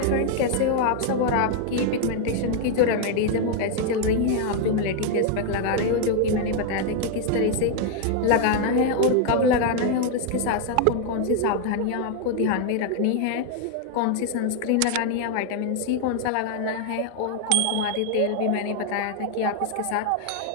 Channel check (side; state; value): both; different; correlation 0.00